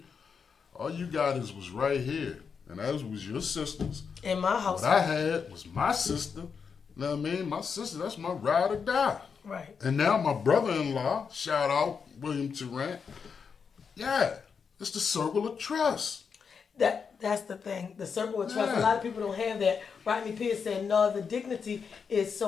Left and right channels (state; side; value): quieter; right; 6.1 dB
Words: All you got was right here. And that was your sisters. In my house. What I had was my sister. You know what I mean? My sister, that's my ride or die. Right. And now my brother-in-law, shout out William Tarrant, yeah, it's the circle of trust. That's the thing. The circle of trust. Yeah. A lot of people don't have that. Rodney Pierce said, "No, the dignity is